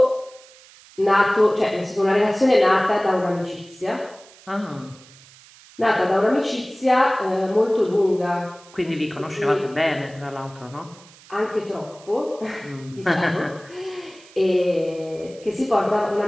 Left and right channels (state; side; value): noise; right; hiss, 24 dB below the sound